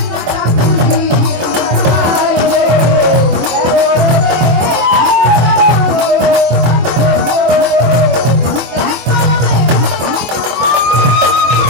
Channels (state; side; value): late; left; 24 ms